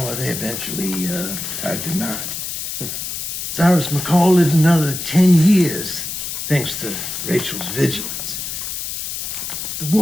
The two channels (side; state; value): left; noise; hiss, 5 dB below the sound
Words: they eventually tied the knot. Cyrus McCall lived another 10 years, thanks to Rachel's vigilance. The